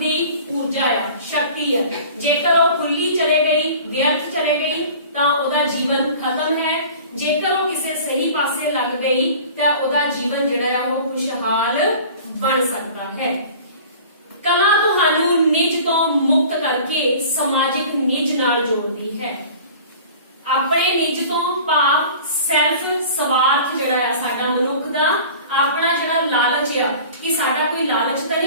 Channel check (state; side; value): inverted; both; correlation -0.43